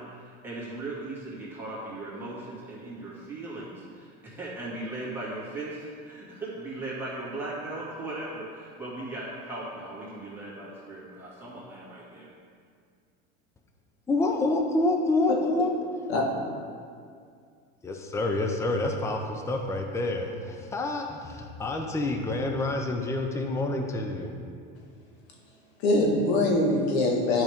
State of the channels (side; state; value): both; normal; correlation 0.39